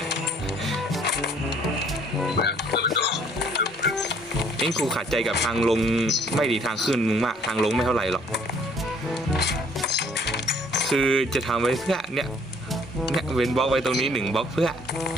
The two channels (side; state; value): both; normal; correlation 0.60